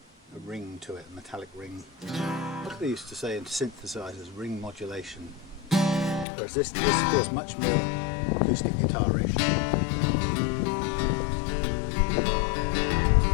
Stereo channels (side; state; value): right; drops out; at 6.2 s